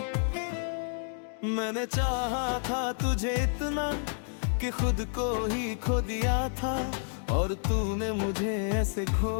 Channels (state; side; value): silent; right; digital silence